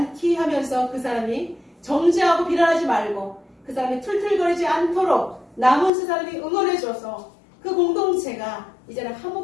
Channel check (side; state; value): right; drops out; at 5.9 s